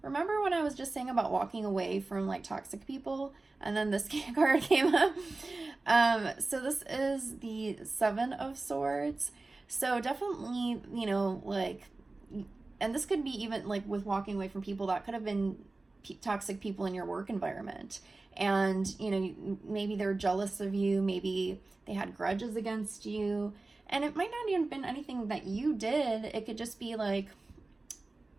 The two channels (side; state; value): left; quieter; 3.3 dB